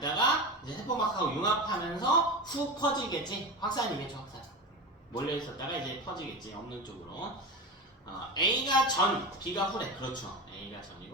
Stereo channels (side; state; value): both; normal; correlation 0.24